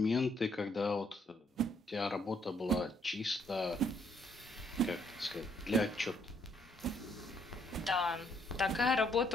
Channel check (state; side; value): normal; both; correlation 0.69